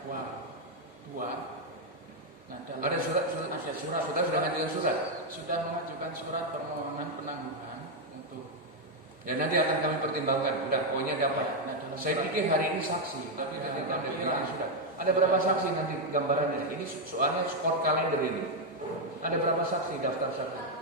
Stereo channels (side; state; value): both; normal; correlation 0.01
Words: 2. Nah, Ada surat, sudah ngajukan surat. Sudah mengajukan surat permohonan penangguhan untuk. Ya nanti akan kami pertimbangkan. Udah, pokoknya dapat. Nah, dalam Saya surat- pikir hari ini saksi, tapi Ya, nanti ada tapi bilang ya. sudah. Ada berapa saksi nanti gambarannya? Ini soalnya skor kalender ini. Ada berapa saksi daftar saksi?